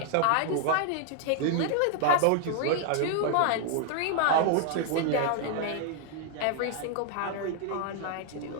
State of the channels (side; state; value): both; different; correlation 0.00